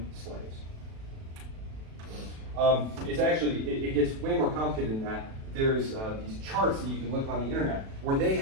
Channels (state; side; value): late; left; 37 ms